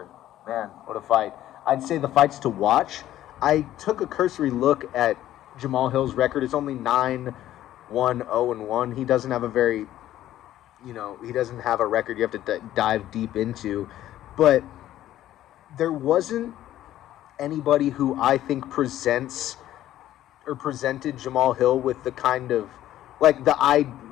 Man, what a fight. I'd say the fights to watch. I took a cursory look at Jamal Hill's record. It's only 9-1-0-1. He doesn't have a very, he doesn't have a record you have to dive deep into. But there wasn't anybody who I think presented Jamal Hill with the kind of,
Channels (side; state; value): right; quieter; 13.2 dB